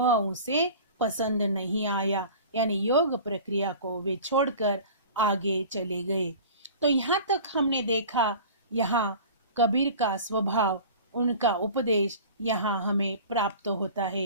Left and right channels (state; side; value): inverted; both; correlation -0.40